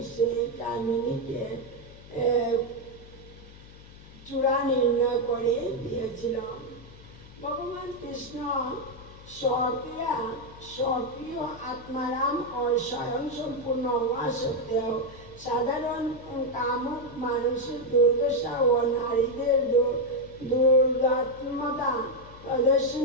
সেই কামিনীকে চূড়া নির্ণয় করে দিয়েছিল। ভগবান কৃষ্ণ স্বকীয় আত্মারাম ও স্বয়ং সম্পূর্ণ হওয়া সত্ত্বেও সাধারণ কামুক মানুষের দুর্দশা ও নারীদের দুর্দাত্মতা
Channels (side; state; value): left; noise; hum, 19 dB below the sound